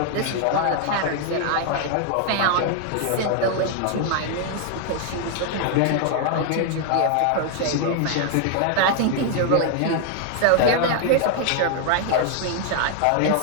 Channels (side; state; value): both; different; correlation 0.00